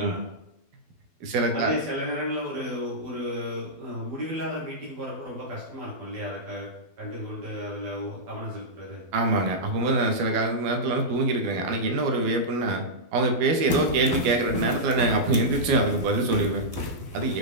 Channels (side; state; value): left; late; 12 ms